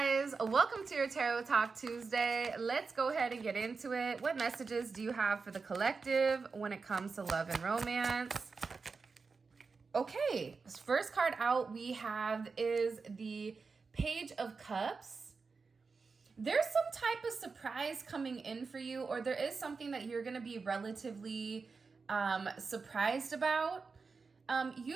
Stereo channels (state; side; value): quieter; left; 4.7 dB